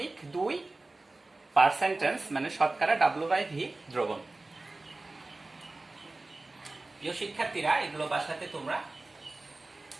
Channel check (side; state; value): left; quieter; 3.1 dB